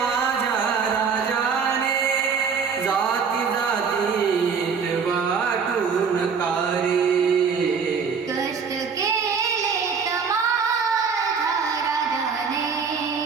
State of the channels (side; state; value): left; quieter; 5.9 dB